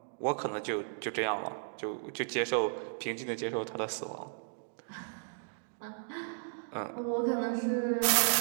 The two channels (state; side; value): silent; left; digital silence